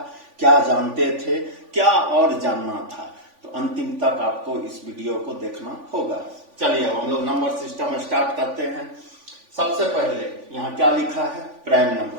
क्या जानते थे, क्या और जानना था। तो अंतिम तक आपको इस वीडियो को देखना होगा। चलिए अब हम लोग नंबर सिस्टम स्टार्ट करते हैं। सबसे पहले यहाँ क्या लिखा है, प्राइम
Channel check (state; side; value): late; left; 3.5 ms